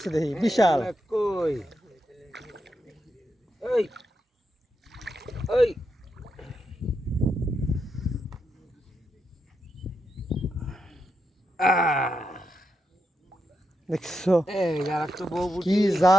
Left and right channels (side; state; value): both; normal; correlation 0.84